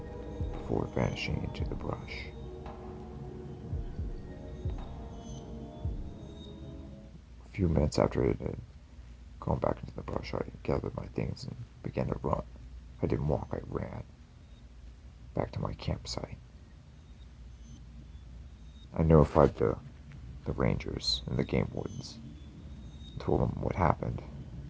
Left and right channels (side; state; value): both; identical; correlation 1.00